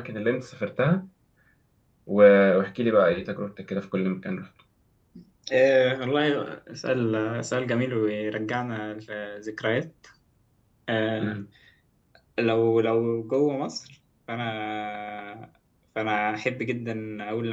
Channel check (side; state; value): both; identical; correlation 1.00